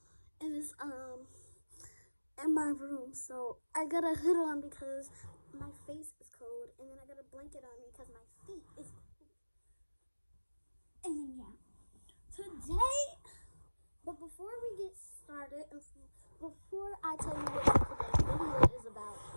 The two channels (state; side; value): inverted; both; correlation -1.00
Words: and it's in my room, so I got a hood on because my face is cold, and then I got a blanket on me because my feet is cold. And then yeah, today. But before we get started, and before I tell you what today's video is about,